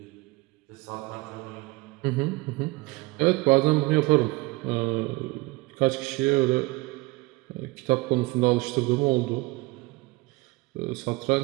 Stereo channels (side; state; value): left; quieter; 23.1 dB